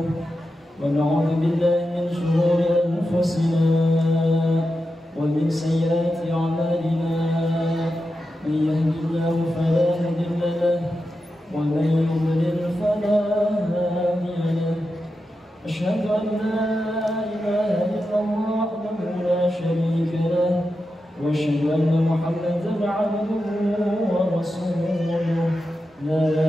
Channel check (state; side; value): normal; both; correlation 0.89